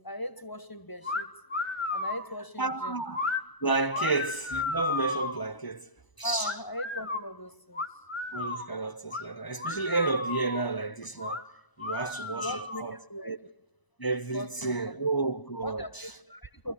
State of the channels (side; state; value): right; late; 1.0 ms